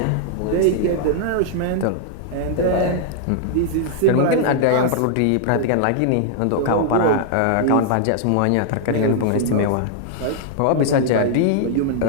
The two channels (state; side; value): different; both; correlation -0.01